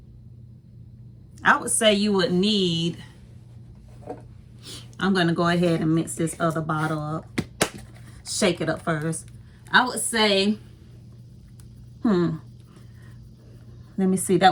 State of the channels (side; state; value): both; identical; correlation 1.00